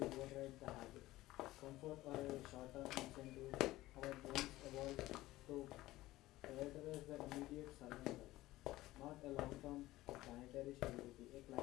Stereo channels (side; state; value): right; quieter; 17.1 dB